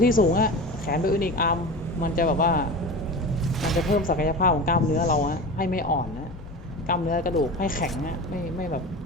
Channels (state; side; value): normal; both; correlation 0.30